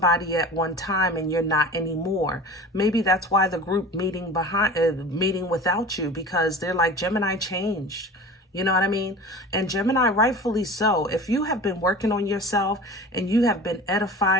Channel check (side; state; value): both; normal; correlation 0.37